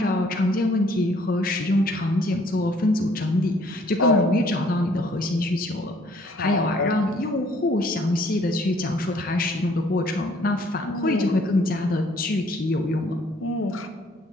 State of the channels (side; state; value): both; normal; correlation 0.61